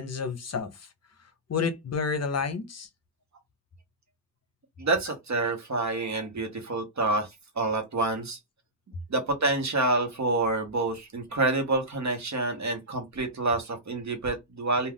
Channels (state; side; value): normal; both; correlation -0.17